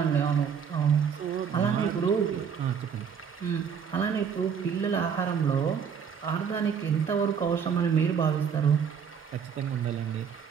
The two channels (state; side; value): quieter; left; 7.1 dB